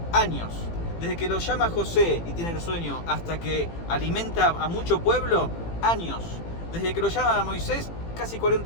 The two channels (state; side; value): late; right; 18 ms